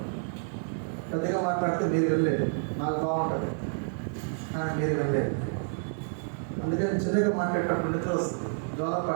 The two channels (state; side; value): silent; left; digital silence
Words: పెద్దగా మాట్లాడితే మీరు వెళ్ళలేదు, నాకు బాగుంటుంది కానీ మీరు వెళ్ళలేదు. అందుకని చిన్నగా మాట్లాడేటప్పుడు నిద్ర వస్తుంది, జ్వరం